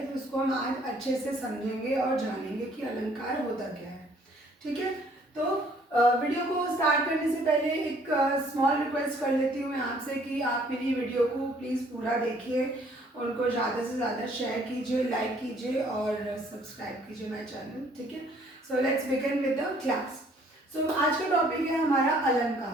तो उसको हम आज अच्छे से समझेंगे और जानेंगे कि अलंकार होता क्या है। ठीक है, तो वीडियो को स्टार्ट करने से पहले एक स्मॉल रिक्वेस्ट कर लेती हूँ मैं आपसे कि आप मेरी वीडियो को प्लीज़ पूरा देखिए, उनको ज़्यादा से ज़्यादा शेयर कीजिए, लाइक कीजिए और सब्सक्राइब कीजिए माय चैनल। ठीक है, so let's begin with the class. So आज का टॉपिक है हमारा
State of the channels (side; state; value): both; normal; correlation 0.60